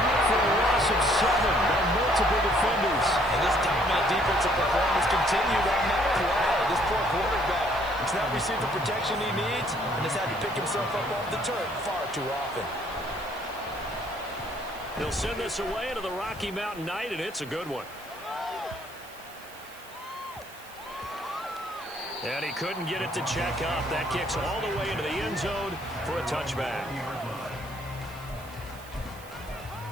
for a loss of 7 by multiple defenders. And this dominant defensive performance continued on that play. This poor quarterback has not received the protection he needs and has had to pick himself up off the turf far too often. He'll send this away into the Rocky Mountain night, and it's a good one. And he couldn't get it to check up. That kicks all the way into the end zone for a touchback.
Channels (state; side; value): noise; right; hiss, 21 dB below the sound